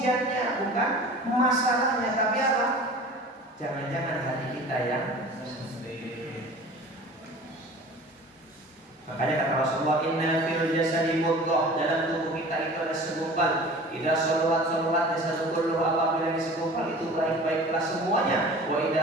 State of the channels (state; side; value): normal; both; correlation 0.41